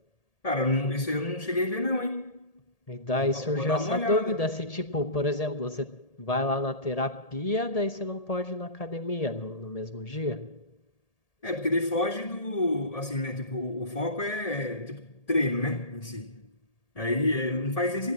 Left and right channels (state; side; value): late; right; 1.8 ms